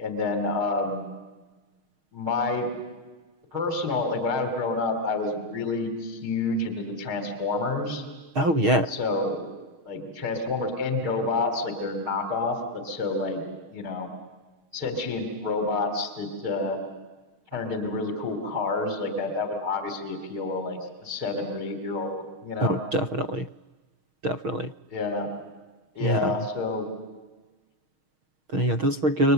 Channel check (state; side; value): late; left; 6.4 ms